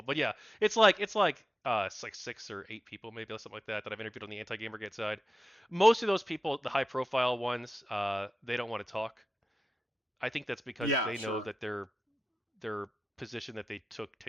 But yeah, it's like 6 or 8 people maybe, or something like that I've interviewed on the anti Gamergate side. Most of those people, the high profile ones, they don't want to talk. I think that's because Yeah, they know sure. that their position that they took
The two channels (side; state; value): both; normal; correlation 0.93